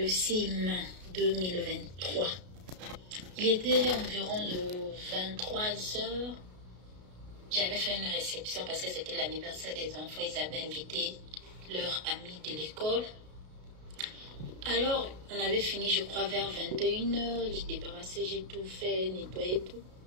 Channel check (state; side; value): late; left; 33 ms